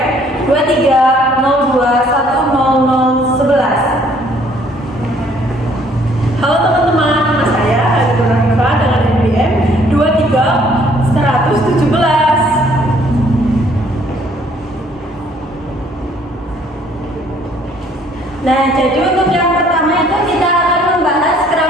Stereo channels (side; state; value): both; normal; correlation 0.61